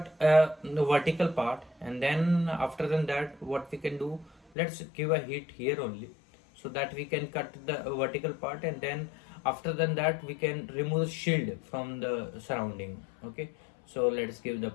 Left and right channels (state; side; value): drops out; right; at 4.4 s